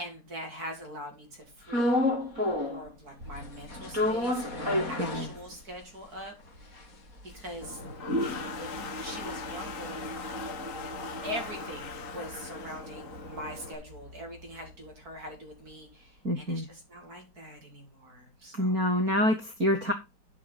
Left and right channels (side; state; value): left; late; 4.5 ms